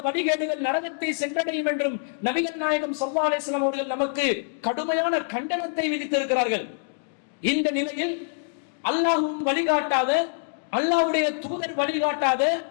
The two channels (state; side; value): silent; right; digital silence